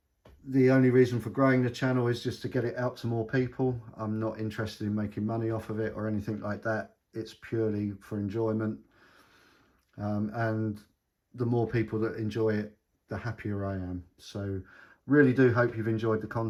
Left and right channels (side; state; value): both; identical; correlation 1.00